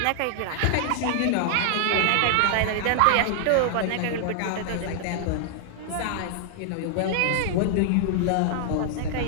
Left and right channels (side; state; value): both; different; correlation 0.00